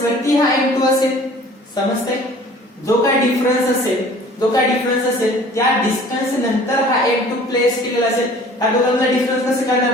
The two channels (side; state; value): both; normal; correlation 0.49